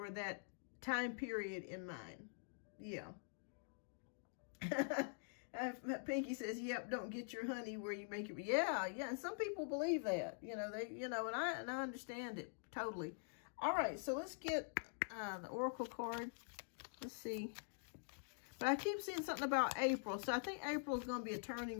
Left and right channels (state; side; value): silent; right; digital silence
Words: that time period in mind. Yeah. Pinky says, yep, don't get your honey where you make it. Yeah. And some people believe that, and I understand it totally. All right. So let's get the Oracle card. Let's see. But I keep seeing something about April. So I think April is going to be a